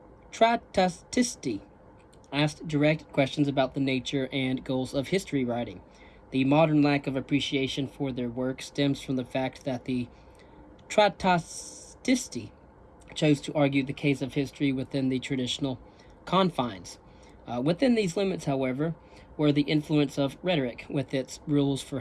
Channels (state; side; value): identical; both; correlation 1.00